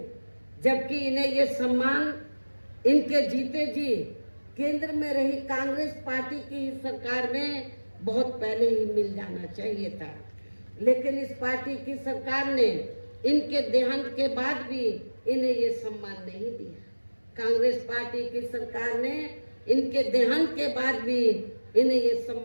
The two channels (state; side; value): inverted; both; correlation -1.00